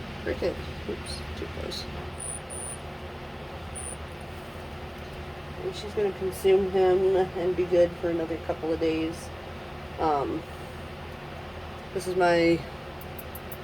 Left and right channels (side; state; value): both; identical; correlation 1.00